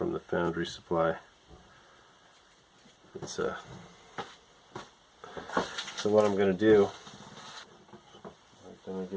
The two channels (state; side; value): identical; both; correlation 1.00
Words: the foundry supply. It's so what I'm gonna do, I'm gonna